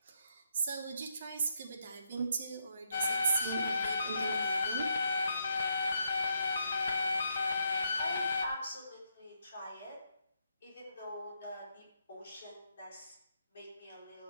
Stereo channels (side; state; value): both; inverted; correlation -0.77